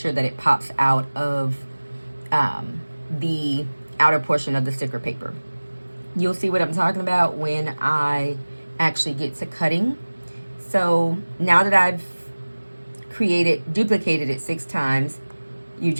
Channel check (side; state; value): both; inverted; correlation -1.00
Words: that it pops out of the outer portion of the sticker paper. You'll see what I'm talking about when I actually get to cutting. So now that I've duplicated it 6 times, you